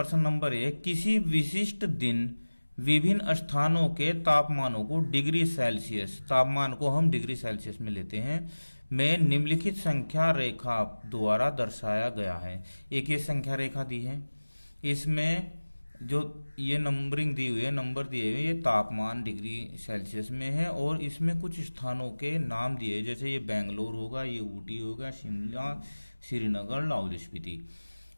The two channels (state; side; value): inverted; both; correlation -1.00